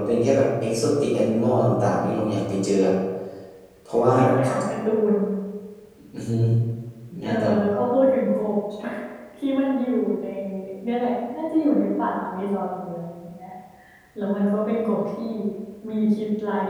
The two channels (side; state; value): both; identical; correlation 1.00